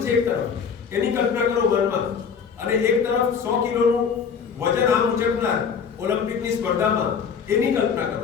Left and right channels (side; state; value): right; quieter; 6.5 dB